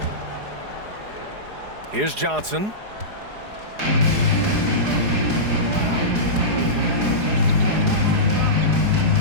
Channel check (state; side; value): late; left; 4.8 ms